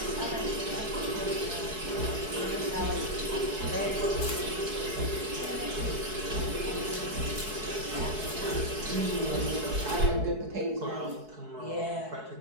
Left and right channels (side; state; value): left; late; 4.7 ms